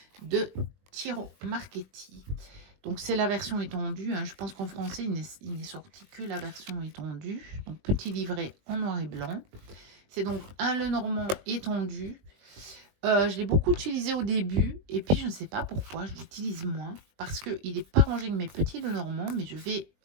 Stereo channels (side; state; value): left; late; 20 ms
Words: de Tiro Marchetti. Donc, c'est la version étendue. Hein. Je pense qu'en français, il n'est sorti que la version étendue. Donc, petit livret en noir et blanc. C'est donc un Lenormand étendu. Je l'ai beaucoup utilisé au début. Et puis, je ne sais pas pourquoi, je l'utilise moins. Parce qu'il n'est pas rangé avec mes petits Lenormand. Mais je vais